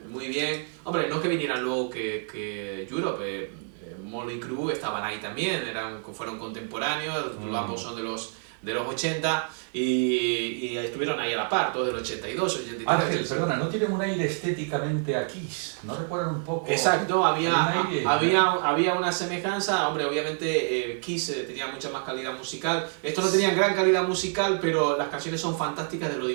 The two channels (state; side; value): silent; left; 57 dB below the other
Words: muy bien. Hombre, no es que vinieran luego que Europe, Motley Crue estaban ahí también, fueron contemporáneos, ambos son de los 80 y estuvieron ahí a la par, todos del 82, 83. Ángel, perdona, ¿no tienen un aire estéticamente a Kiss? ¿No recuerdan un poco? Exacto, aire, había una semejanza. Hombre, obviamente Kiss tenía mucha más calidad musical. Estos no tenían gran calidad musical, pero las canciones son fantásticas de lo